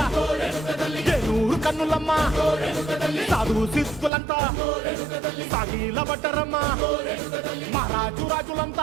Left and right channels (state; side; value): drops out; left; at 4.1 s